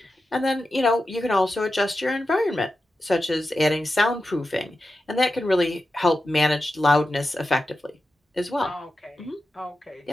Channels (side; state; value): both; normal; correlation 0.91